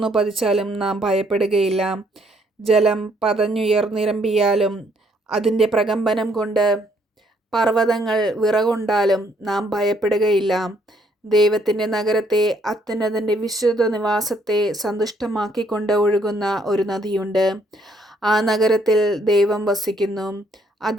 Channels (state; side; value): normal; both; correlation 0.68